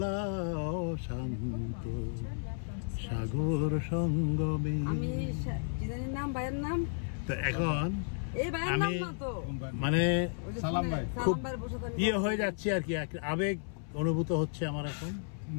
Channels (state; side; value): silent; right; 56 dB below the other